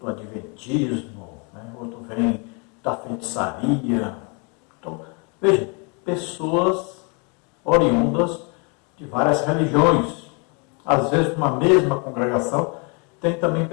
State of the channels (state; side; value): quieter; right; 33.7 dB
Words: Adventismo, né? Outro vem da feitiçaria. Então, veja, pessoas oriundas de várias religiões. Às vezes, numa mesma congregação, tem também